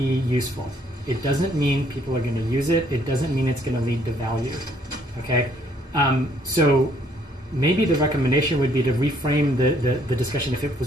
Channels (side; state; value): both; normal; correlation 0.65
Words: useful. It doesn't mean people are going to use it. It doesn't mean it's going to lead to value. Okay, so maybe the recommendation would be to reframe the discussion if it